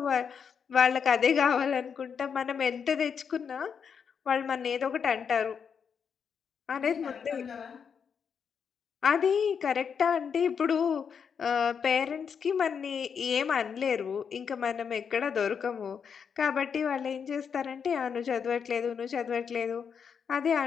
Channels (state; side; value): quieter; right; 6.8 dB